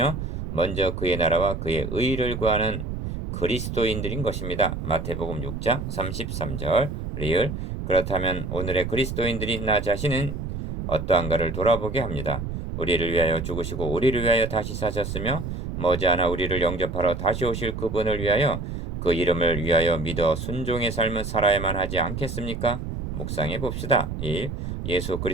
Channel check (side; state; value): right; noise; rumble, 5 dB below the sound